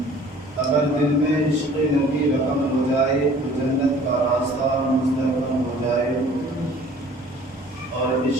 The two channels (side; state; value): both; normal; correlation 0.51